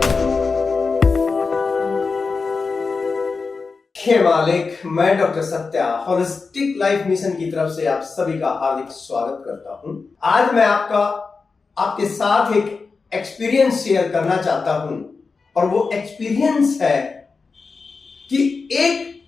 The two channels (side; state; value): right; quieter; 4.5 dB